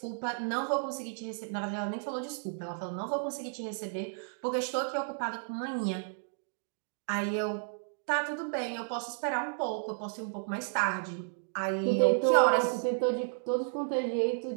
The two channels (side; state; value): left; silent; digital silence